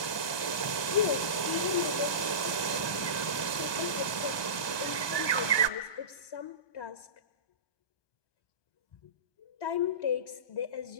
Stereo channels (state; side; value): late; right; 1.2 ms